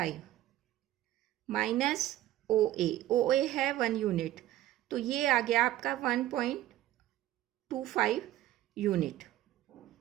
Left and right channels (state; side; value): quieter; left; 14.2 dB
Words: माइनस ओ ए है 1 यूनिट, तो ये आ गया आपका 1.25 यूनिट।